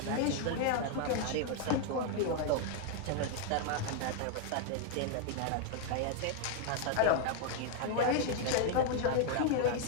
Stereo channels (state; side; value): different; both; correlation 0.00